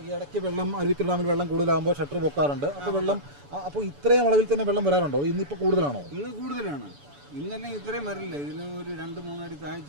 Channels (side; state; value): left; late; 7.0 ms